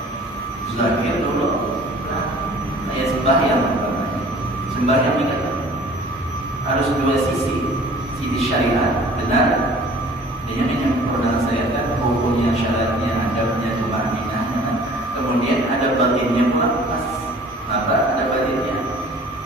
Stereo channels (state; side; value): normal; both; correlation 0.49